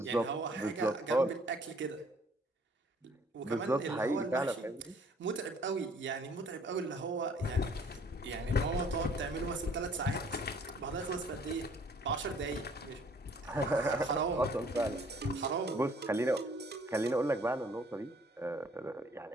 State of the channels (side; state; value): both; normal; correlation 0.58